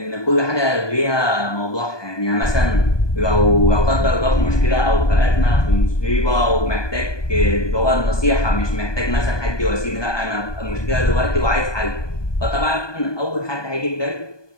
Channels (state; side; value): late; right; 1.2 ms